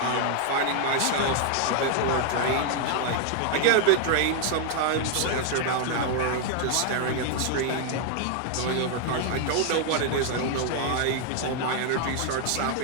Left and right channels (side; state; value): both; different; correlation 0.00